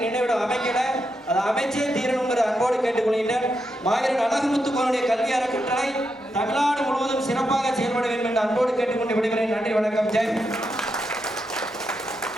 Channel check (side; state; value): both; normal; correlation 0.84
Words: நினைவிடம் அமைக்கல. அதை அமைச்சே தீரணுங்கிற அன்போடு கேட்டுக்கொள்கின்றனர். மாவீரன் அழகுமுத்துக்கோனுடைய கல்வி அறக்கட்டளை தமிழ்நாடு முழுவதும் சிறப்பாக செயல்பட வேண்டும் என்று அன்போடு கேட்டுக்கொண்டு விடுகிறேன். நன்றி, வணக்கம், ஜெய்.